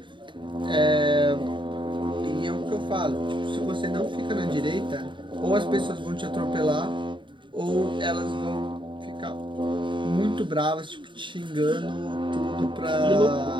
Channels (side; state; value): left; late; 0.23 ms